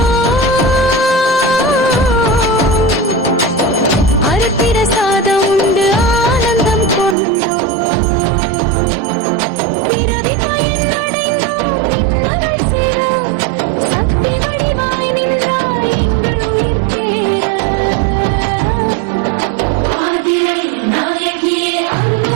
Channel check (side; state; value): left; drops out; at 7.2 s